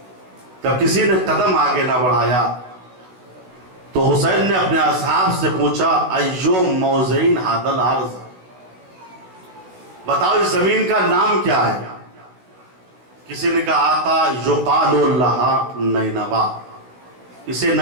جب کسی نے قدم آگے نہ بڑھایا تو حسین نے اپنے اصحاب سے پوچھا، ایو موضعین ھذا الارض، بتاؤ اس زمین کا نام کیا ہے؟ کسی نے کہا آقا یقال لہا نینوا، اسے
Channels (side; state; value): left; late; 16 ms